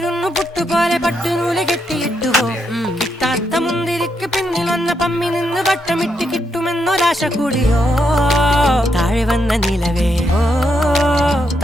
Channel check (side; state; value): both; normal; correlation 0.80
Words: പുട്ടുപോലെ പട്ടുനൂല് കെട്ടിയിട്ടുവോ കിട്ടാത്ത മുന്തിരിക്ക് പിന്നിൽ വന്ന പമ്മി നിന്ന് വട്ടമിട്ട് കിട്ടുമെന്നൊരാശ കൂടിയോ താഴെ വന്ന നിലവേ ഓ